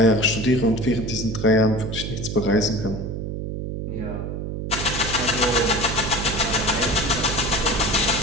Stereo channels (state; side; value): noise; right; hum, 5 dB below the sound